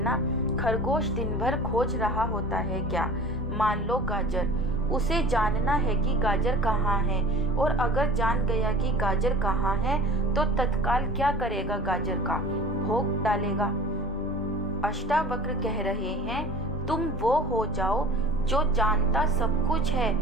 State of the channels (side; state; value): both; normal; correlation 0.41